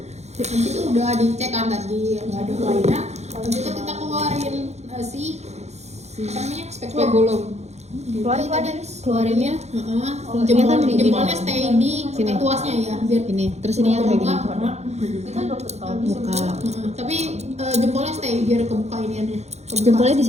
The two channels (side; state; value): left; late; 0.32 ms